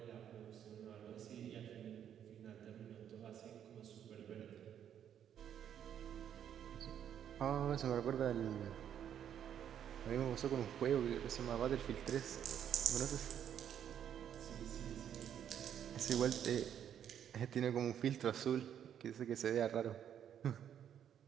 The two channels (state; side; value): quieter; left; 9.4 dB